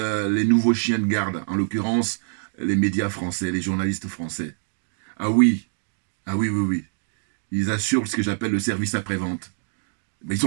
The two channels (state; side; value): silent; left; digital silence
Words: nouveaux chiens de garde, en l'occurrence les médias français, les journalistes français. Ah oui. Ils assurent ce que j'appelle le service après-vente. Mais ils